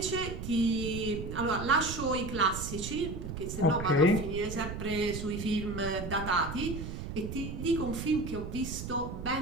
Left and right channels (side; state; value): right; noise; rumble, 7 dB below the sound